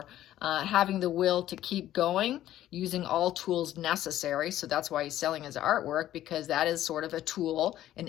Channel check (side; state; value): right; quieter; 13.0 dB